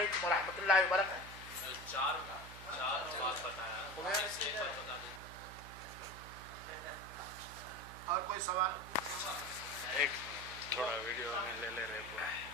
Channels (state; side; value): noise; right; hum, 14 dB below the sound